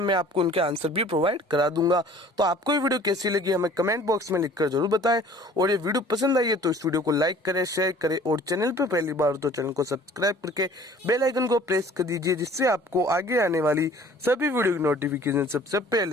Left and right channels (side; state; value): both; normal; correlation 0.50